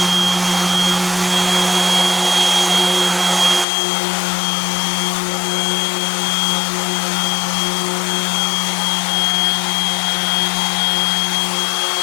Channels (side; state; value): right; drops out; at 3.7 s